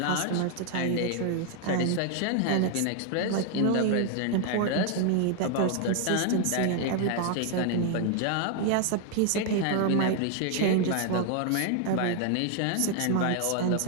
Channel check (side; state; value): both; different; correlation 0.00